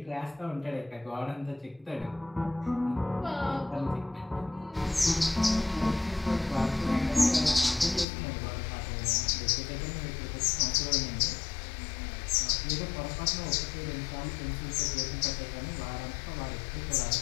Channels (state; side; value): drops out; right; at 8.1 s